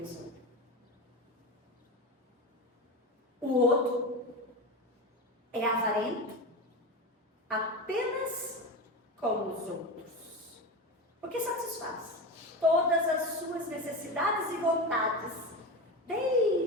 O outro é avarento apenas com os outros, porque satisfaz todas as suas necessidades e vontades,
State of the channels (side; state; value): both; normal; correlation 0.22